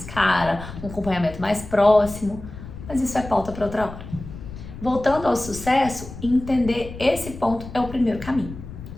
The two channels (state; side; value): noise; left; rumble, 12 dB below the sound